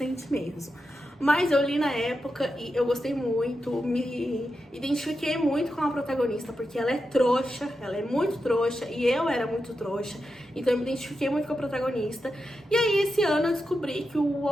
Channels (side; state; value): both; normal; correlation 0.88